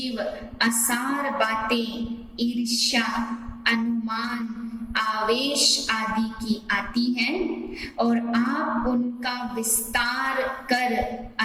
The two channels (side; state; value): both; identical; correlation 1.00